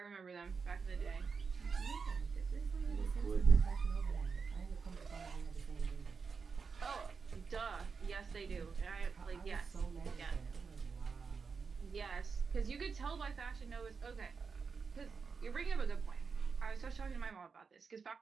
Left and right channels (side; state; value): left; quieter; 5.3 dB